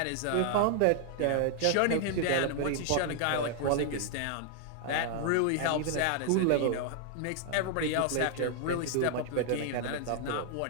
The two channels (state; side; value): different; both; correlation 0.00